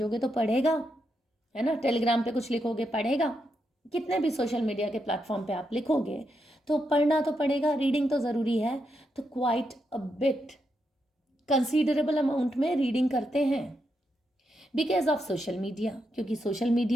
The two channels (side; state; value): both; normal; correlation 0.83